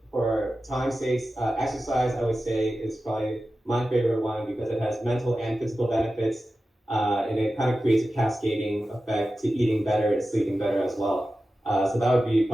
for time's sake, exercise, I would say, is probably my favorite one because it has mental and physical benefits. And it kind of creates a cascading effect to eating better and sleeping better as well. So that would be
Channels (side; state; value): both; normal; correlation 0.93